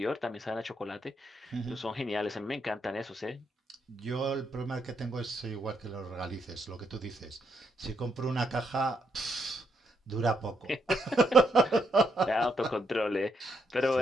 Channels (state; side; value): normal; both; correlation 0.77